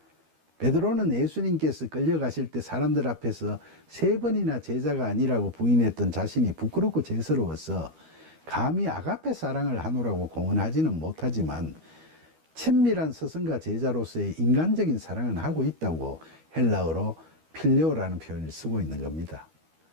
베드로는 예수님께서 끌려가실 때 사람들 앞에서 3번이나 제자가 아니라고 부인했던 자신이 부끄럽고 죄스러워서 감히 아가페 사랑을 하노라고 공언하지는 못하지만 친밀한 스승과 제자로서의 인간적인 사랑은 하고 있다고 헬라어로 필레오라는 표현을 쓰고 있는 겁니다.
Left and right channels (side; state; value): left; late; 13 ms